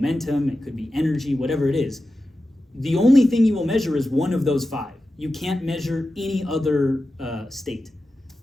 it could be energy, whatever it is, the only thing you will measure is one of those 5. You can't measure any other state.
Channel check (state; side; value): normal; both; correlation 0.93